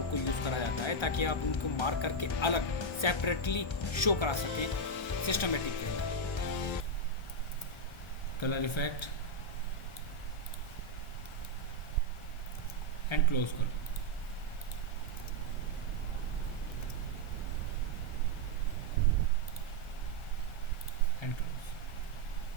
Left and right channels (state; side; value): late; right; 1.3 ms